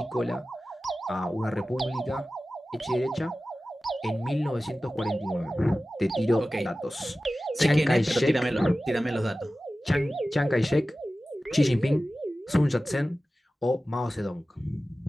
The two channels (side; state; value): both; normal; correlation 0.95